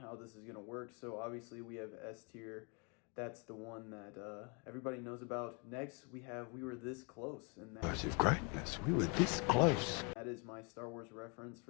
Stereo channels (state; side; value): quieter; right; 33.7 dB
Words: this is going to work. So obviously we have S tier. That's the one that everybody knows about. Next, we were this close. And Of greatness, we were this close. That is my Star Wars reference